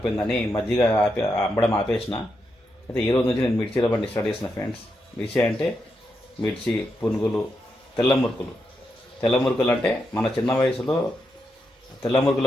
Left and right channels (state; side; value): normal; both; correlation 0.84